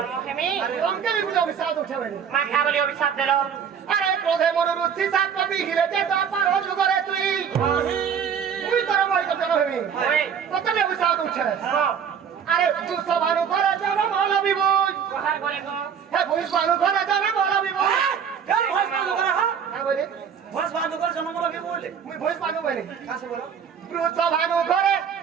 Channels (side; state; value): left; quieter; 7.5 dB